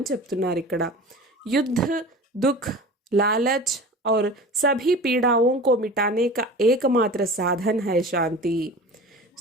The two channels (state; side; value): normal; both; correlation 0.36